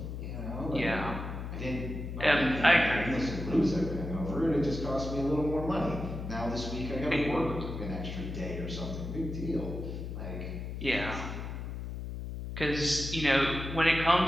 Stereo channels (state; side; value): noise; left; hum, 6 dB below the sound